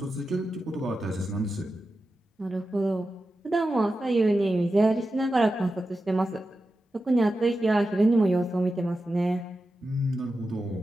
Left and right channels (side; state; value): both; normal; correlation 0.91